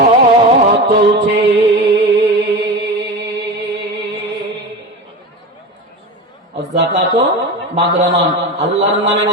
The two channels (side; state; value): both; normal; correlation 0.26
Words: চলছে। যাকাত মাগরামান, আল্লাহর নামে